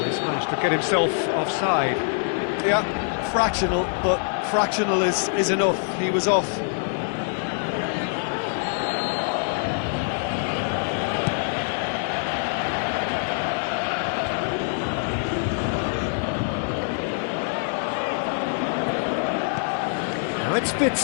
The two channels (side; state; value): right; silent; 62 dB below the other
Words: he's managed to get himself offside. Yeah, fractional, but fractional is enough. He was off. Now it's